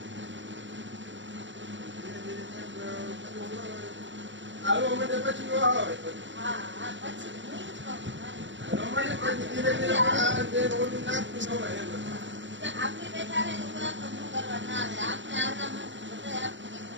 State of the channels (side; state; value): left; late; 0.54 ms